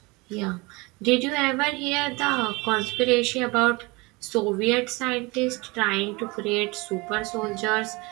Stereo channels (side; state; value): left; quieter; 25.2 dB